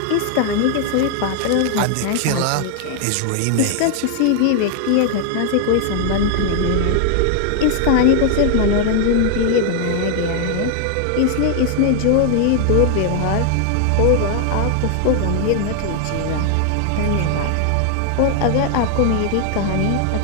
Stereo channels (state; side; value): different; both; correlation 0.00